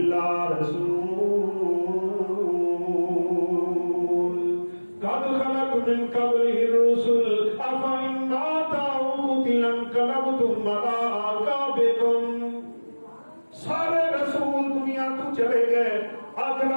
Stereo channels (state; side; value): inverted; both; correlation -1.00